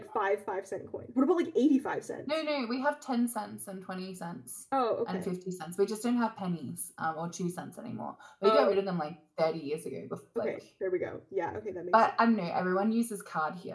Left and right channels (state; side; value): identical; both; correlation 1.00